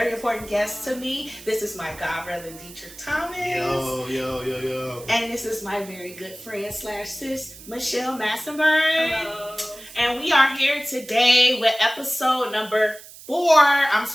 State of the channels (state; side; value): noise; right; hiss, 17 dB below the sound